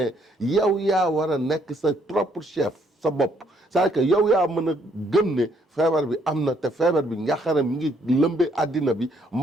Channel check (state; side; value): normal; both; correlation 0.68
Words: yow yaa war a nekk sa propre chef sa bopp c'est-à-dire que yow yaa mën a gëm ne feebar bi am na te feebar bi njàqare mi ngi lëmbe àddina bi